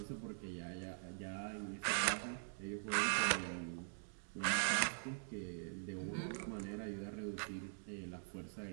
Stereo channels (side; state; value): left; silent; digital silence